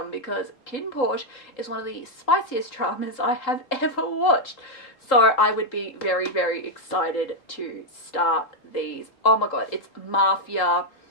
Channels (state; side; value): late; right; 3.8 ms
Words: because KinnPorsche is one of the spiciest dramas I have ever watched. So I would be very, very excited to start these. Oh my god, it's mafia,